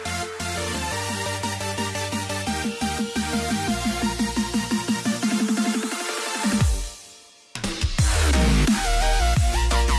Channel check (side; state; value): both; identical; correlation 1.00